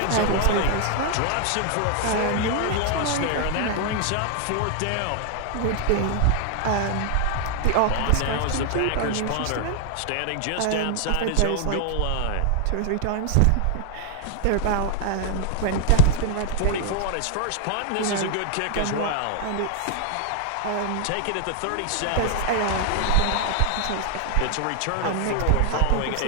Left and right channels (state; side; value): different; both; correlation 0.00